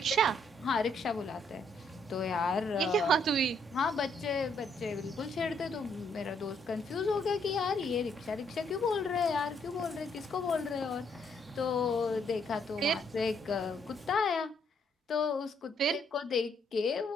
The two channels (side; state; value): both; normal; correlation 0.71